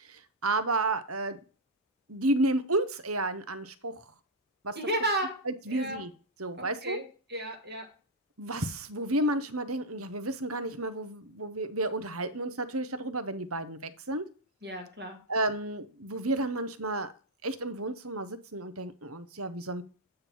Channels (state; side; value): normal; both; correlation -0.01